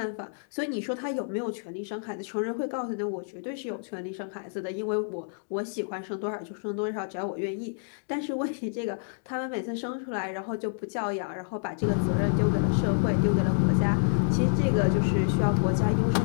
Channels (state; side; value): silent; right; digital silence